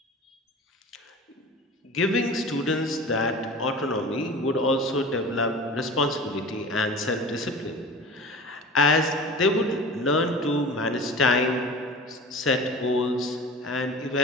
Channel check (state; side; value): normal; both; correlation 0.37